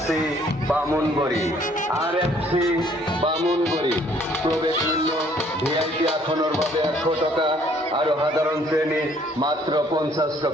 বামুনবড়ি প্রবেশ মূল্য ভিআইপি আসনের ভাবে 100 টাকা আর সাধারণ শ্রেণী মাত্র 50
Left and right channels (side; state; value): both; normal; correlation 0.61